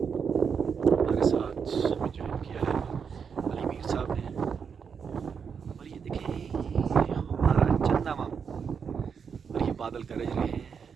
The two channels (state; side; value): quieter; left; 6.5 dB